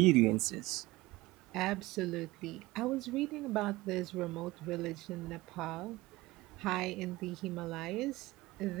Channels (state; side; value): quieter; left; 19.8 dB